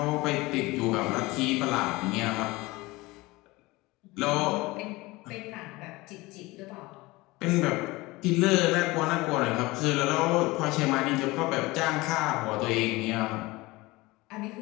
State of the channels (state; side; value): quieter; right; 21.5 dB